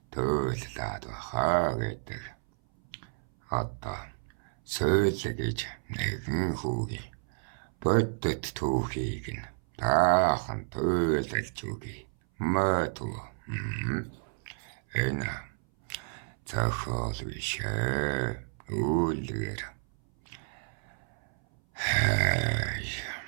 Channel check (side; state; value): left; silent; 57 dB below the other